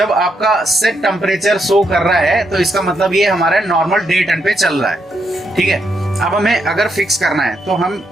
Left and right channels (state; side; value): normal; both; correlation 0.79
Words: आपका सेट टेम्परेचर शो कर रहा है तो इसका मतलब ये हमारे नॉर्मल 1.5 टन पे चल रहा है, ठीक है। अब हमें अगर फिक्स करना है तो हम